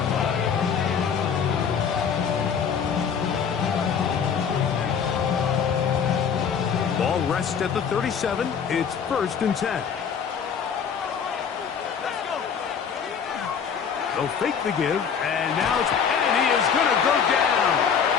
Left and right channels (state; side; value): quieter; right; 7.0 dB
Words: line. Ball rests at the 37. It's first and 10. They'll fake the give, and now and he is going to go down.